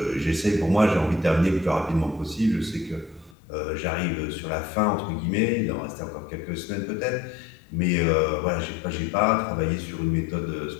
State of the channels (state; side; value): drops out; right; at 3.4 s